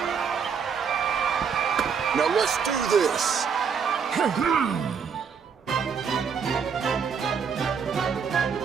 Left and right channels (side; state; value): left; quieter; 6.5 dB